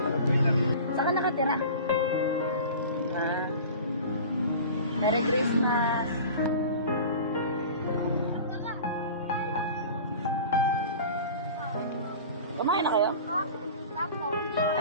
Saan ka nakatira? Merry Christmas! Kumain na kayo?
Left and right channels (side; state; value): both; inverted; correlation -0.38